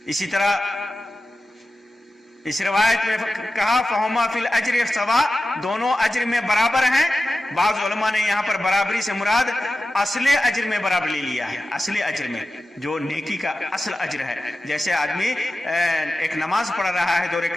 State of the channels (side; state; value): both; normal; correlation 0.94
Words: اسی طرح اس روایت میں کہا فہما فی الاجر سوا، دونوں اجر میں برابر ہیں۔ بعض علماء نے یہاں پر برابری سے مراد اصل اجر میں برابر لے لیا ہے، اصل اجر میں جو نیکی کا اصل اجر ہے۔ جیسے آدمی ایک نماز پڑھ رہا ہے 2